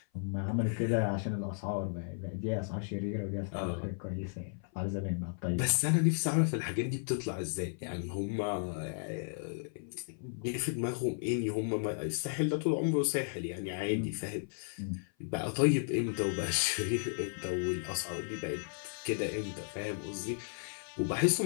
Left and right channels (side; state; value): right; silent; 55 dB below the other